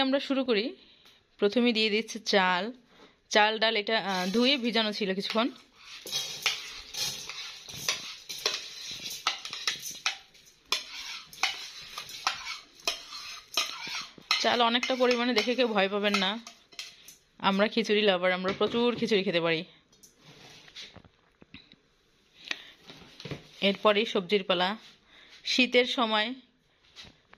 আমরা শুরু করি। প্রথমেই দিয়ে দিচ্ছে চাল ডাল, এটা ধুয়ে ভিজানো ছিল কিছুক্ষণ। চাল অনেকটা পরিমাণে, দেখে কেউ ভয় পাবেন না। আমরা খিচুড়ি লাভার, আমরা প্রচুর খিচুড়ি খেতে পারি। এরপরেই সবজির পালা। শীতের সময়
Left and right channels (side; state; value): both; identical; correlation 1.00